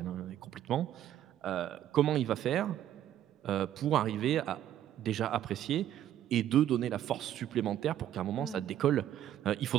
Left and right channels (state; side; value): quieter; left; 11.5 dB